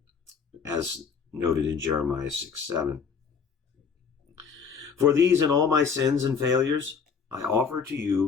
as noted in Jeremiah 6:7. For these and all my sins and failures, I offer to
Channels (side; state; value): right; quieter; 6.1 dB